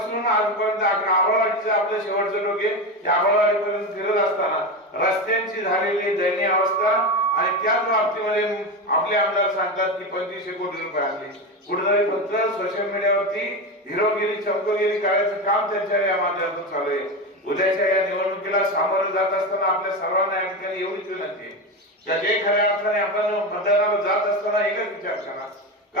आजपर्यंत आंबळवाडीचं आपलं शेवटचं टोके या आंबळवाडीपर्यंत फिरत असताना रस्त्यांची झालेली दयनीय अवस्था आणि त्याच बाबतीमध्ये आपले आमदार सांगतात की 2500 कोटी रुपये आणले. कुठेतरी फक्त सोशल मीडियावरती हिरोगिरी चमकोगिरी करायचं काम त्यांच्या या माध्यमातून चालू आहे. उद्याच्या या निवडणुकीला सामोरं जात असताना आपल्या सर्वांना या ठिकाणी एवढीच विनंती आहे की जे खऱ्या अर्थाने आपण मतदानाला जात असताना एकच विचार करा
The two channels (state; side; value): normal; both; correlation 0.18